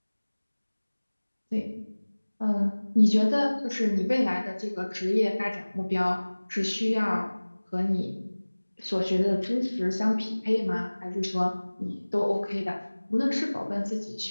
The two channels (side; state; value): both; inverted; correlation -1.00